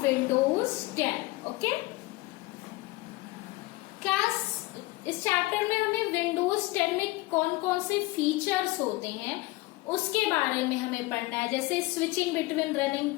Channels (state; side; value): quieter; right; 20.9 dB